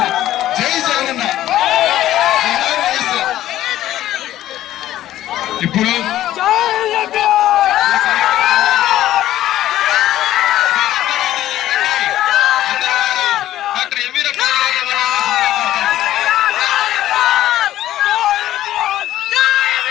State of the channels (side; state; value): right; quieter; 13.5 dB